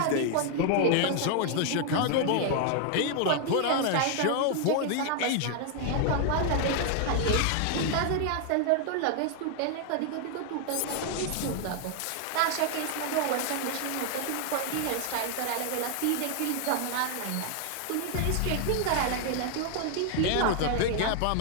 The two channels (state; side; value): different; both; correlation 0.00